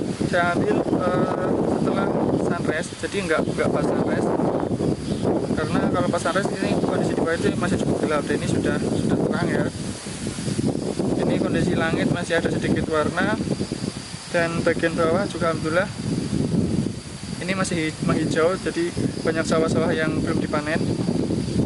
saya ambil setelah sunrise, jadi nggak pas sunrise. Karena kalau pas sunrise ini kondisi di bawah itu masih cukup gelap, dan ini sudah terang ya. Ini kondisi langit masih ada sedikit warna, dan bagian bawah juga alhamdulillah ini masih menghijau, jadi banyak sawah-sawah yang belum dipanen.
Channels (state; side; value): identical; both; correlation 1.00